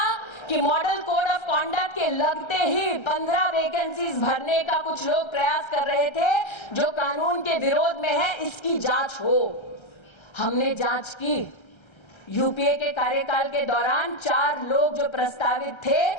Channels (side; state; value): right; late; 1.3 ms